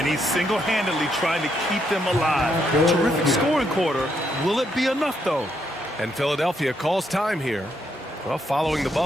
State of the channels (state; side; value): normal; both; correlation 0.76